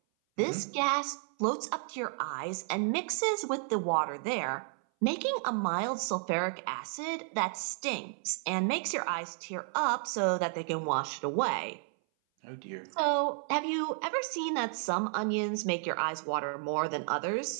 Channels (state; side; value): silent; left; 56 dB below the other